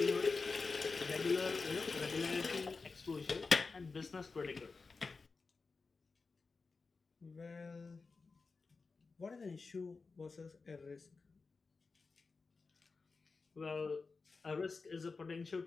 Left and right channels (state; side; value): quieter; right; 4.3 dB